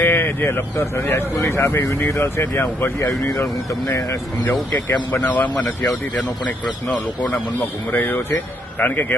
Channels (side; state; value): both; normal; correlation 0.73